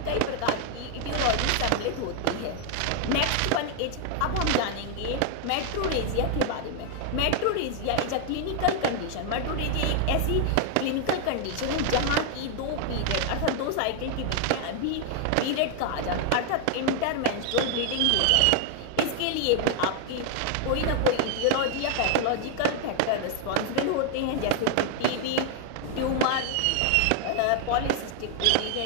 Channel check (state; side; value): different; both; correlation 0.00